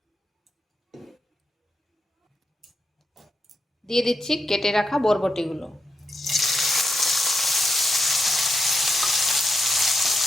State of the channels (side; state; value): both; normal; correlation 0.83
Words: দিয়ে দিচ্ছি কেটে রাখা বরবটিগুলো।